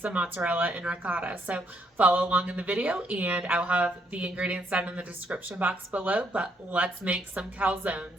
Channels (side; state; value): both; normal; correlation 0.73